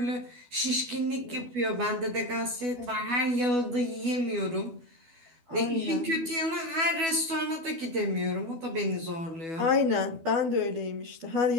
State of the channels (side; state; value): left; late; 12 ms